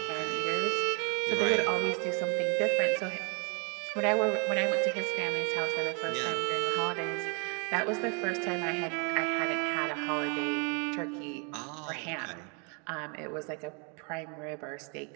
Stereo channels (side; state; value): left; quieter; 35.3 dB